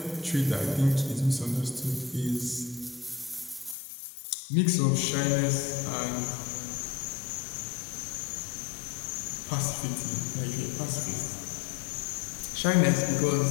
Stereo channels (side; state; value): right; drops out; at 3.8 s